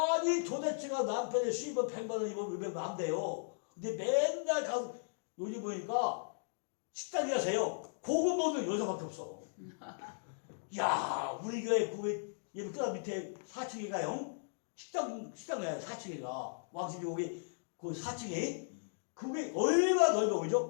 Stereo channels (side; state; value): right; silent; digital silence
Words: 도대체가 남편의 수입은 100만 원, 200만 원 안 돼요. 근데 맨날 가서, 요즘 보니까 식당에 가세요. 고급 먹는 여자밖에 없어. 야, 우리 교회 예를 끄다 밑에 4층에 가요. 식당 가요, 4층에 가. 왕십리 거기, 그 4층에. 그게 얼마나 넓어,